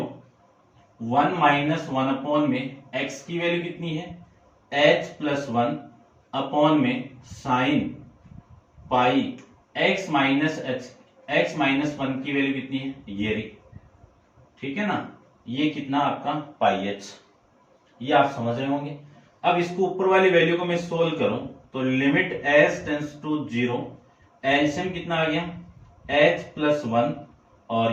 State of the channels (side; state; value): both; identical; correlation 1.00